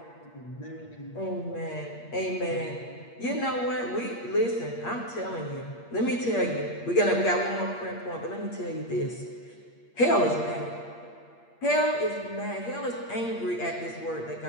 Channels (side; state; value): right; late; 8.5 ms